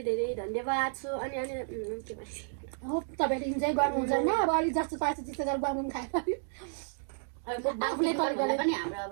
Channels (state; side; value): silent; left; digital silence